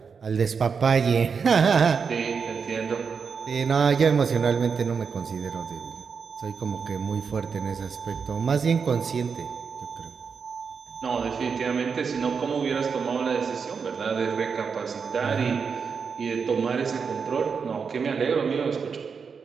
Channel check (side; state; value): left; quieter; 5.8 dB